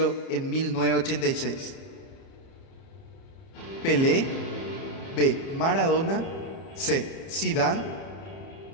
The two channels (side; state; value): right; late; 30 ms